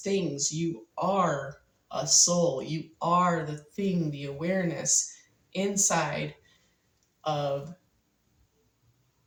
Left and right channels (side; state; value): both; identical; correlation 1.00